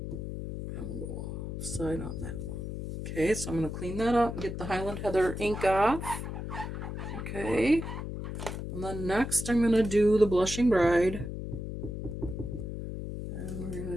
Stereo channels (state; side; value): noise; left; hum, 6 dB below the sound